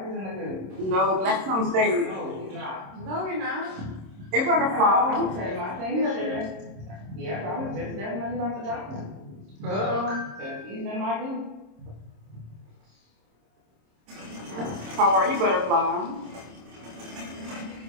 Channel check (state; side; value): late; left; 26 ms